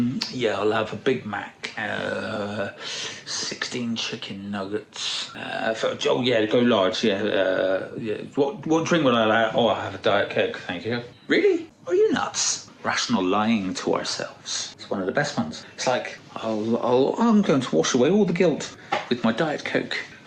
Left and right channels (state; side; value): identical; both; correlation 1.00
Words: a Big Mac, 16 chicken nuggets. Go large. What drink would I like? Oh, I have a Diet Coke, thank you. Really? Are you nuts? Rational lying to ourselves. It's one of the best ones. It's like, I'm going to wash away all the guilt with my Diet Coke,